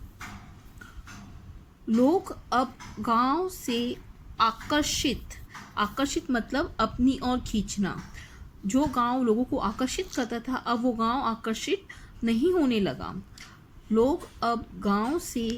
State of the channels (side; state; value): both; identical; correlation 1.00